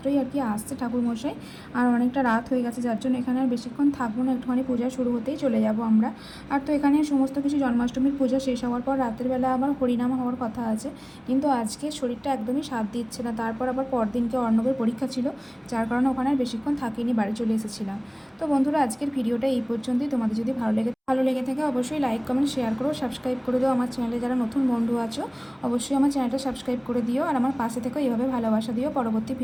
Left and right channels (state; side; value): identical; both; correlation 1.00